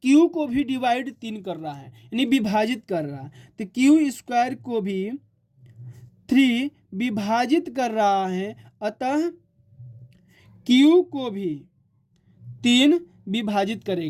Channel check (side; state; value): both; identical; correlation 1.00